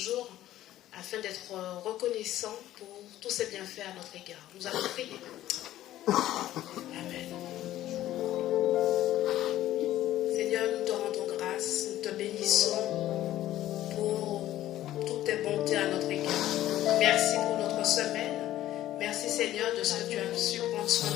afin d'être reconnaissants pour tous ses bienfaits à notre égard. Nous allons prier. Amen. Seigneur, nous te rendons grâce, nous te bénissons pour toutes tes bontés à notre égard. Merci pour notre semaine. Merci Seigneur de ce que tu as su prendre soin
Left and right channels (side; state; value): right; quieter; 13.8 dB